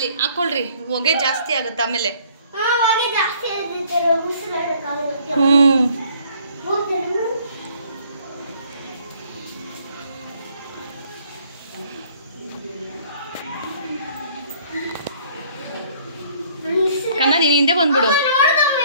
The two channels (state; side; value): inverted; both; correlation -0.59